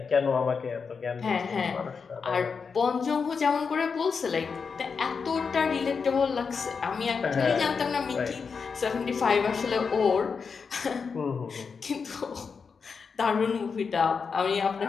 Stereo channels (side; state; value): right; quieter; 5.5 dB